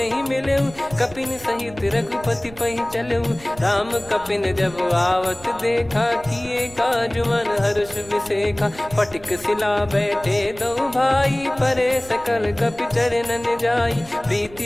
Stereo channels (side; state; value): right; noise; rumble, 20 dB below the sound